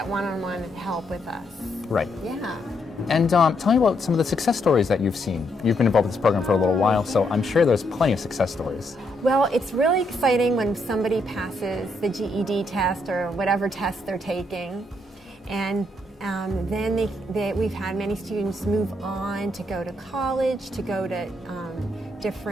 one-on-one help with us. Right. Yeah. And tell me about some of the success stories that you've seen. You've been involved with this program for a little while, so I'm sure there's plenty of success stories. Well, it's really exciting when somebody passes the GED test or whatever test they're taking, and then we've had many students move on to go to college, to go to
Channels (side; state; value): both; normal; correlation 0.76